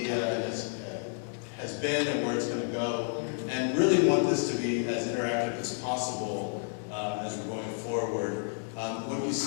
has been and where it's going to go, and really want this to be as interactive as possible as we're going forward. What you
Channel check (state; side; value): silent; right; 57 dB below the other